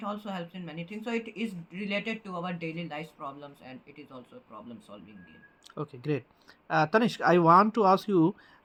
also helps in many things. So it is related to our daily life problems, and it is also a problem solving game. Okay, great. Tanishq, I want to ask you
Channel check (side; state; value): both; identical; correlation 1.00